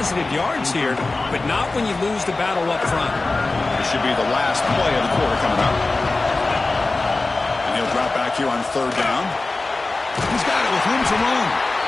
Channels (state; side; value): quieter; right; 3.4 dB